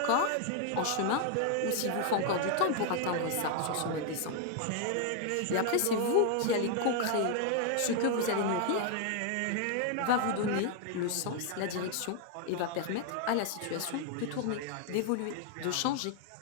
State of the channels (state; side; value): different; both; correlation 0.00